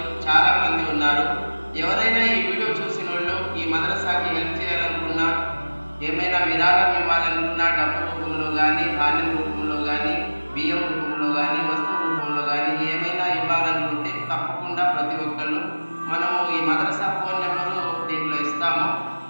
చాలామంది ఉన్నారు. ఎవరైనా ఈ వీడియో చూసిన వాళ్ళు ఈ మదరసాకి హెల్ప్ చేయాలనుకున్నా, ఏమైనా విరాళం ఇవ్వాలనుకున్నా, డబ్బు రూపంలో కానీ, ధాన్యం రూపంలో కానీ, బియ్యం రూపంలో కానీ, వస్తువు రూపంలో కానీ ఏమైనా ఇవ్వాలనుకుంటే తప్పకుండా ప్రతి ఒక్కళ్ళు మనము ఈ మదరసా ఫోన్ నెంబరు దీంట్లో ఇస్తాము.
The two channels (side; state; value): both; inverted; correlation -1.00